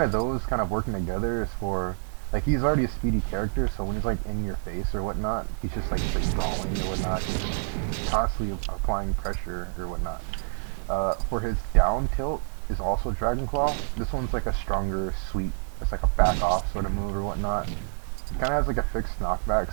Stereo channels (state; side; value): silent; left; digital silence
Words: of those kind of working together is for, like, he's already a speedy character, so when he's like in your face or whatnot, he's just like straight brawling or whatnot. He's just constantly applying pressure or whatnot. For his down tilt is also Dragon Claw. This one's like a stronger sweep. It's like a back off sort of move or whatnot. It kind of has like a fixed